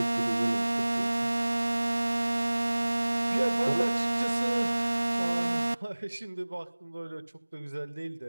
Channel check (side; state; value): both; inverted; correlation -1.00